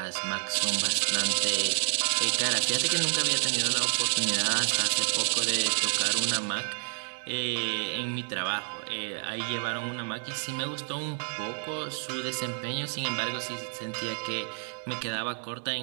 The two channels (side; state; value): left; silent; 58 dB below the other